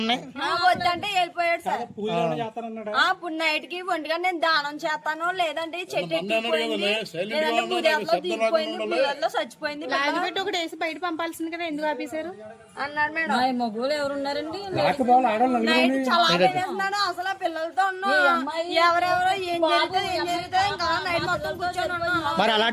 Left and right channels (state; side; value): identical; both; correlation 1.00